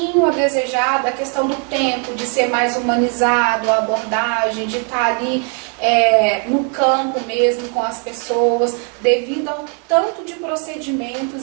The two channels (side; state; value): left; quieter; 37.1 dB